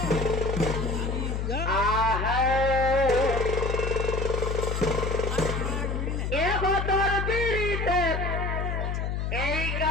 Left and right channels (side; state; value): left; noise; hum, 1 dB below the sound